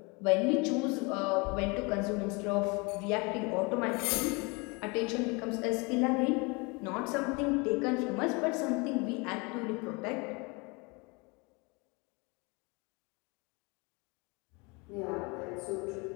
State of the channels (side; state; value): right; quieter; 28.5 dB